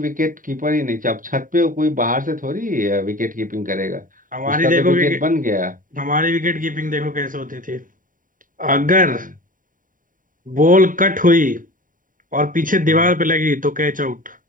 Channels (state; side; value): late; left; 0.39 ms